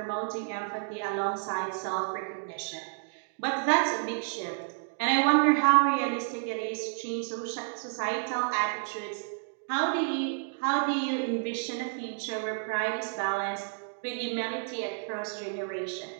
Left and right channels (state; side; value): silent; left; digital silence